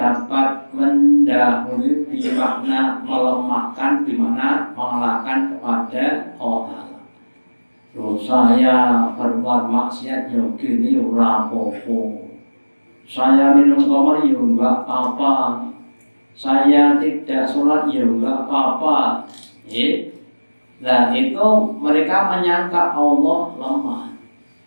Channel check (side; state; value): both; inverted; correlation -1.00